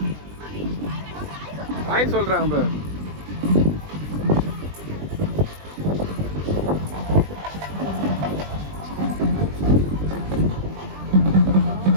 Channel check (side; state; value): left; late; 20 ms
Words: ஹாய் சொல்றாங்க பாரு.